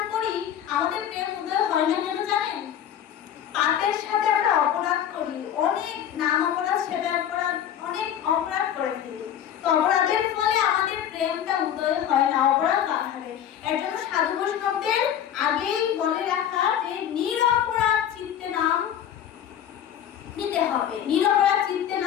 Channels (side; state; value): right; quieter; 9.9 dB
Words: করি, আমাদের প্রেম উদয় হয় না কেন জানেন? পাপের সাথে আমরা অপরাধ করি, অনেক নাম অপরাধ, সেবা অপরাধ, অনেক অপরাধ করে ফেলি। তো অপরাধের ফলে আমাদের প্রেমটা উদয় হয় না, অপরাধ বাড়ে। এর জন্য সাধু বৈষ্ণবদের আগেই বলে রাখা যে নিরপরাধ চিত্তে নাম নিতে হবে, নিরপরাধ চিত্তে